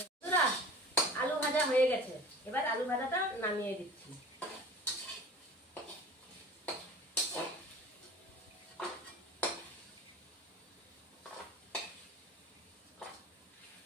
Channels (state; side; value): normal; both; correlation 0.40